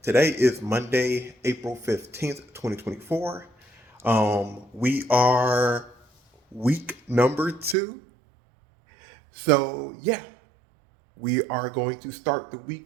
Today is Monday, April 15th, 2024. We are week number 2. So, yeah, we are going to start the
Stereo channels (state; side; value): drops out; left; at 7.8 s